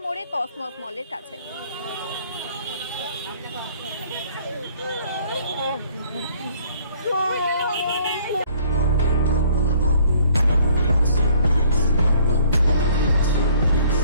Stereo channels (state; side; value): inverted; both; correlation -0.59